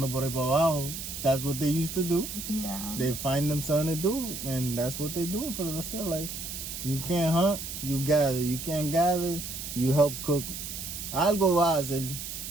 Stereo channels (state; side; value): noise; right; hiss, 7 dB below the sound